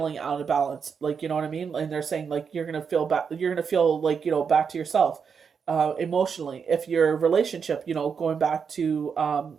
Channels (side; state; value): left; quieter; 6.3 dB